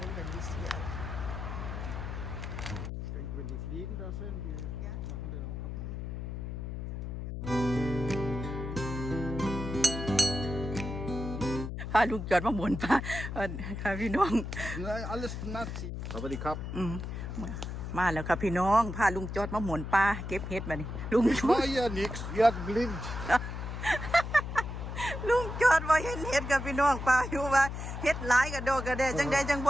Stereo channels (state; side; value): noise; left; hum, 6 dB below the sound